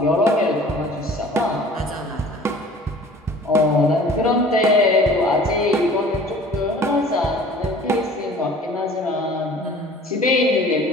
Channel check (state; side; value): normal; both; correlation 0.47